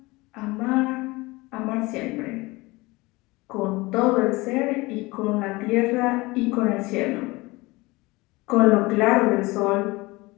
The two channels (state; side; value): quieter; right; 22.4 dB